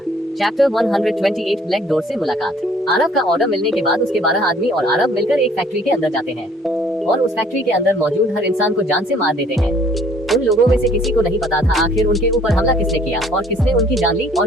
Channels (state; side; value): normal; both; correlation 0.58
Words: चैप्टर 128 ब्लैक डोर से मुलाकात। आरव का ऑर्डर मिलने के बाद उसके 12 आदमी और आरव मिलकर एक फैक्ट्री के अंदर जाते हैं और उस फैक्ट्री के अंदर मौजूद हर इंसान को जान से मार देते हैं। उन लोगों में से किसी को नहीं पता था आखिर उनके ऊपर हमला किसने किया और किसने उनकी जान ली और